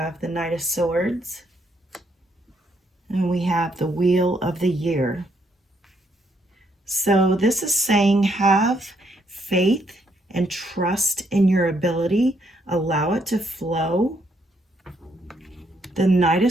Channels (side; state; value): both; normal; correlation 0.73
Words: the Knight of Swords. And we have the Wheel of the Year. So this is saying have faith and trust in your ability. Allow it to flow. The Knight of